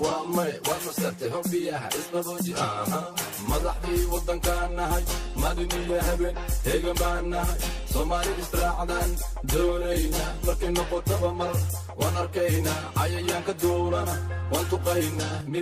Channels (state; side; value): identical; both; correlation 1.00